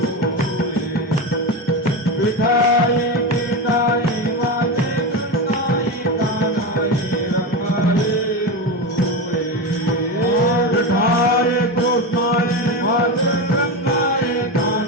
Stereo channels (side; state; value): both; normal; correlation 0.18